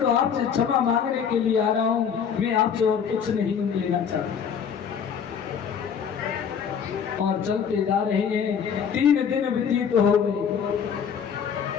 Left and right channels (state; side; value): quieter; right; 7.3 dB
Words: आपसे क्षमा मांगने के लिए आ रहा हूं, मैं आपसे और कुछ नहीं लेना चाहता। और चलते जा रहे हैं। 3 दिन व्यतीत हो गए